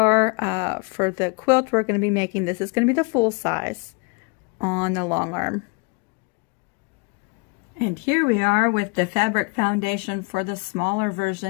for the quilt we're going to be making. This is going to be the full size on the long arm. And here we are with the fabric foundation for the smaller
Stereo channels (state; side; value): quieter; right; 30.9 dB